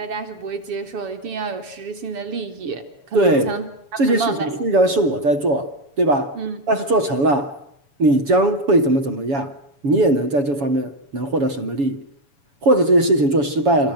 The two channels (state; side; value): late; left; 7.1 ms